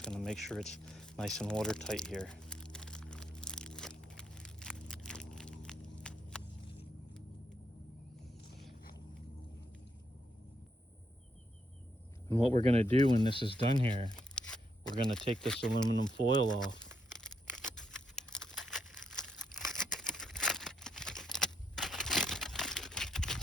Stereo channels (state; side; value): normal; both; correlation 0.77